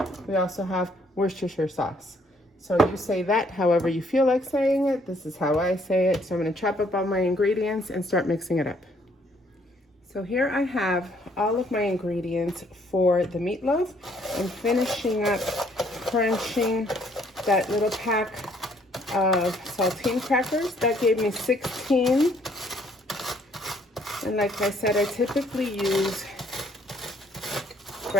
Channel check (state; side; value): normal; both; correlation 0.65